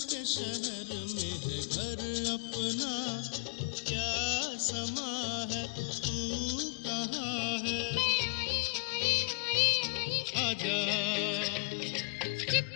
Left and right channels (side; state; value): right; quieter; 34.4 dB